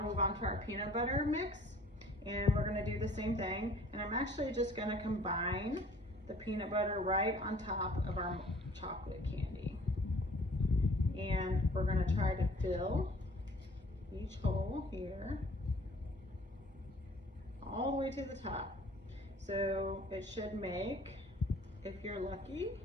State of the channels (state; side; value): normal; both; correlation 0.53